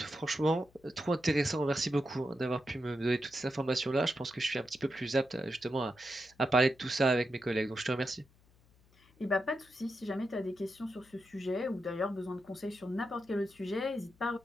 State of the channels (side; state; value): left; noise; hum, 30 dB below the sound